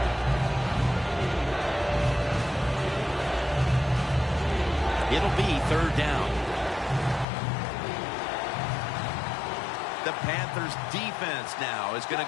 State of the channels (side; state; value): right; drops out; at 7.2 s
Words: It'll be third down. The Panthers defense now is going